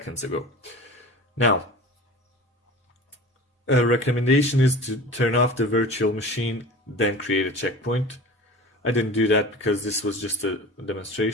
ago. Now, a recommendation is to turn off the virtual machine, then create a checkpoint. I didn't do that because this was just a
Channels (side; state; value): both; normal; correlation 0.37